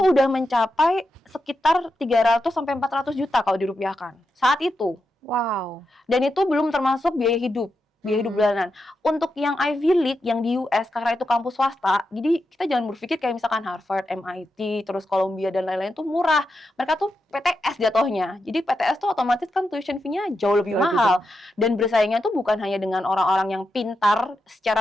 mencapai sekitar 300 sampai 400 juta kalau dirupiahkan. Saat itu. Wow. Dan itu belum termasuk biaya hidup bulanan. Untuk yang Ivy League yang di US karena itu kampus swasta, jadi kita jangan berpikir kayak misalkan Harvard, MIT, terus Columbia dan lain-lain tuh murah. Mereka tuh PTS jatuhnya. Jadi PTS tuh otomatis kan tuition fee-nya jauh lebih mahal. Dan bersaingnya tuh bukan hanya dengan orang-orang yang pintar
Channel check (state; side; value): normal; both; correlation 0.87